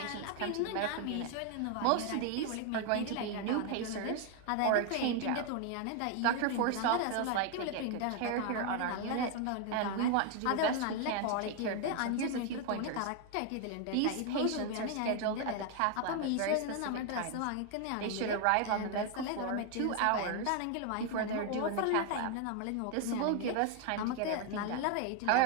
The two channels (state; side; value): different; both; correlation 0.01